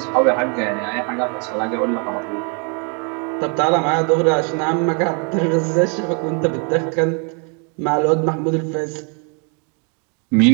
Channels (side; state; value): left; quieter; 37.3 dB